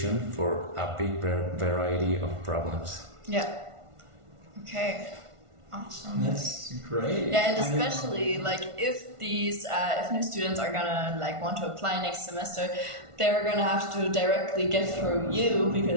for a big variety of problems. Yeah. Okay. Awesome. That's great. Yeah, and especially if these if new students are gonna want to apply next semester, they're gonna have to directly get through you,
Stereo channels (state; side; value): late; left; 1.5 ms